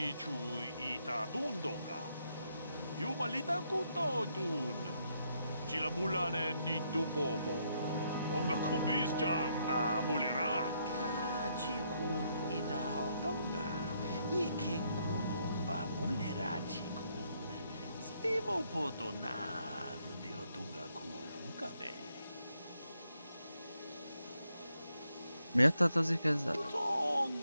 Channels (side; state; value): both; inverted; correlation -0.75